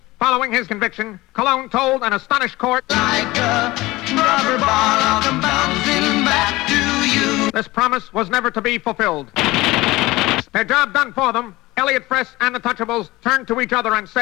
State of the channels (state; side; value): quieter; right; 19.7 dB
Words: Following his conviction, Cologne told an astonished court, Like a rubber ball, I'll come bouncing back to you. this promise was never to be fulfilled. Their job done for them, Elliot Fress and the Touchables turned to each other and